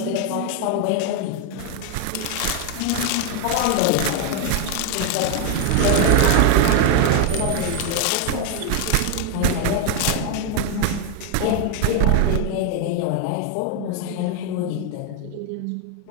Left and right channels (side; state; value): both; different; correlation 0.01